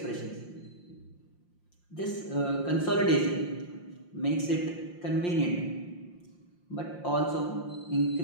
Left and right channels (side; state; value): right; late; 5.7 ms